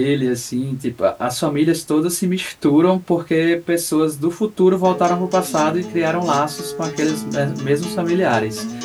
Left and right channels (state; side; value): identical; both; correlation 1.00